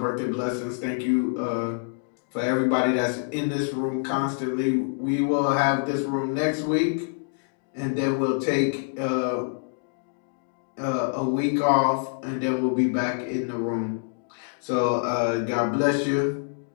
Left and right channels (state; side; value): silent; right; digital silence